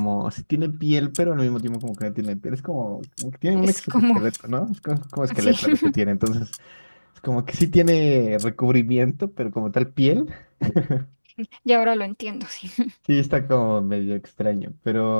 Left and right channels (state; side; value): inverted; both; correlation -1.00